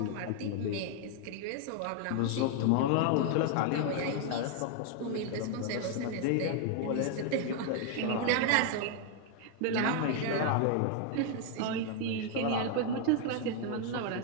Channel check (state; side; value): different; both; correlation 0.00